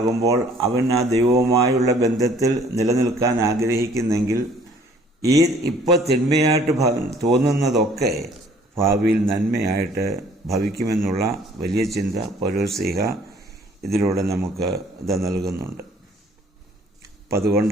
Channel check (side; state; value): both; normal; correlation 0.58